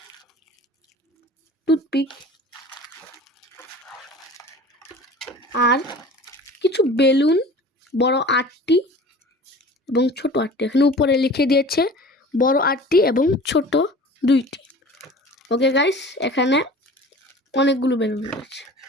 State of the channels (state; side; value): normal; both; correlation 0.42